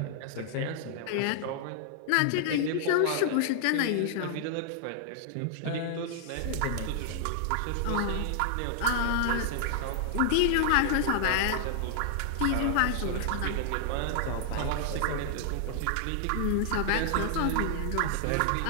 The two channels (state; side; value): different; both; correlation 0.00